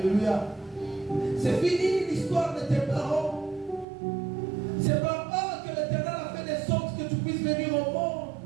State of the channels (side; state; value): left; drops out; at 3.9 s